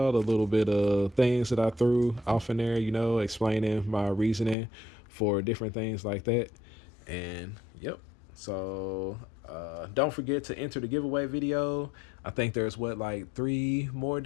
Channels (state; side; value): drops out; right; at 4.5 s